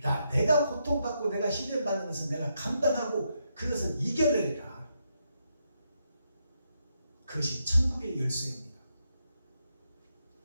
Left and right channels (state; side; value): inverted; both; correlation -0.80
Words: 고통받고 내가 시련받는 것은 내가 감당하고 그것을 이겨내리라. 그것이 천국의 열쇠입니다.